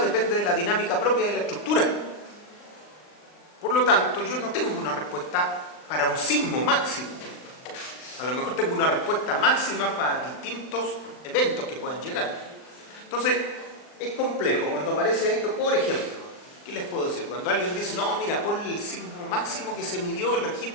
depende de la dinámica propia de la estructura. Por lo tanto, yo no tengo una respuesta para un sismo máximo. A lo mejor tengo una respuesta máxima para distintos eventos que puedan llegar. Entonces, es complejo cuando aparece esto, por ejemplo. ¿Qué les puedo decir? Cuando alguien dice, no, mira, ponle el sismo máximo que se midió, el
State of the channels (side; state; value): right; late; 39 ms